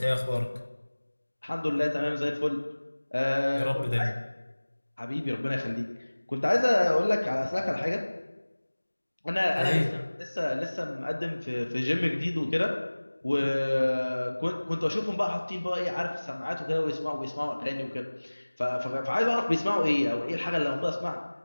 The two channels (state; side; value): inverted; both; correlation -1.00